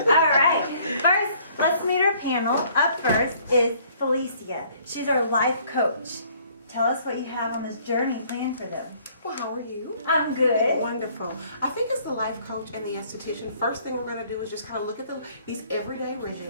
All right. First, let's meet our panel. Up first is Felicia. She's our life coach. Tell us what you have on this journey planned for them. Well, how are you? I'm good. Wonderful. I think as the life coach and the esthetician, first thing we're going to do is just kind of look at these everyday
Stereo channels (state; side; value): inverted; both; correlation -0.60